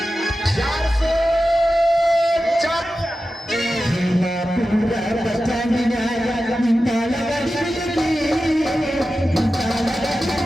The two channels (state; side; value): normal; both; correlation 0.93